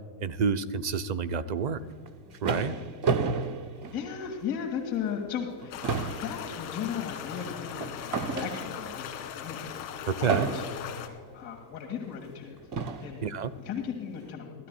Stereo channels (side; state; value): left; late; 2.0 ms